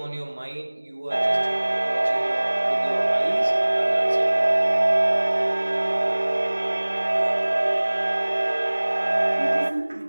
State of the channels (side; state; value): both; inverted; correlation -1.00